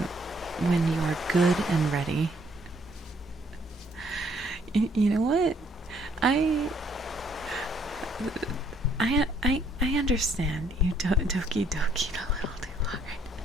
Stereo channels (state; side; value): normal; both; correlation 0.66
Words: when you are good and ready. You know what? I understand you doki doki a little too hard.